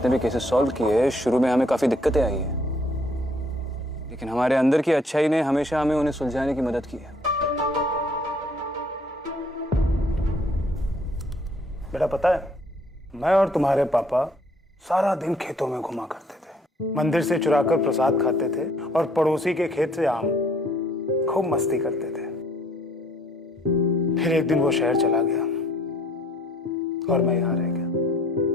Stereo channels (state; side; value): normal; both; correlation 0.62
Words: भी केसेस सॉल्व किए, शुरू में हमें काफी दिक्कतें आई है, लेकिन हमारे अंदर की अच्छाई ने हमेशा हमें उन्हें सुलझाने की मदद की है। बेटा पता है, मैं और तुम्हारे पापा सारा दिन खेतों में घुमा करते थे, मंदिर से चुराकर प्रसाद खाते थे और पड़ोसी के खेत से आम, खूब मस्ती करते थे। फिर एक दिन वो शहर चला गया और मैं यहाँ रह